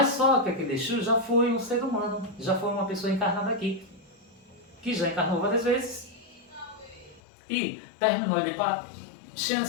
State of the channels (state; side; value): drops out; right; at 7.2 s